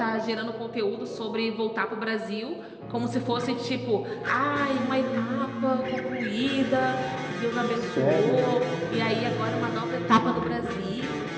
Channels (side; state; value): both; identical; correlation 1.00